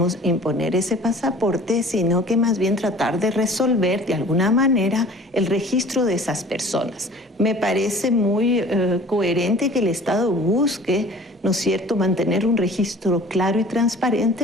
imponer ese pasaporte, sino que más bien tratar de resolver de alguna manera el registro de esas personas. Me parece muy coherente que el Estado busque, ¿no es cierto?, mantener un registro claro y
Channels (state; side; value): normal; both; correlation 0.47